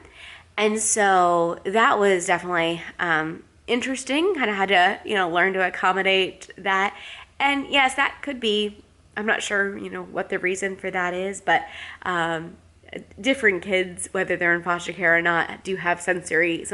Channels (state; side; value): identical; both; correlation 1.00